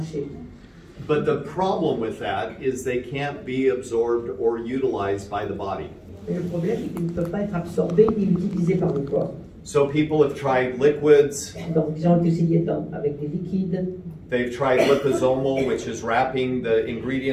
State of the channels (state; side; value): identical; both; correlation 1.00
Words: But the problem with that is they can't be absorbed or utilized by the body. Mais le problème, c'est qu'ils ne peuvent pas être absorbés ni utilisés par le corps. So people have tried liquids, Donc, ils ont essayé avec des liquides. they've tried liposomal, which is wrapping the